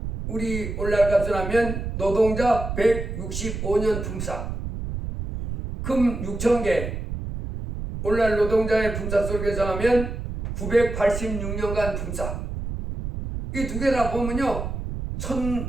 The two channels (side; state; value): right; noise; rumble, 5 dB below the sound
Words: 우리 오늘날 값을 하면 노동자 165년 품삯. 금 6,000개. 오늘날 노동자의 품삯을 계산하면 986년간 품삯. 이 두 개 다 보면요.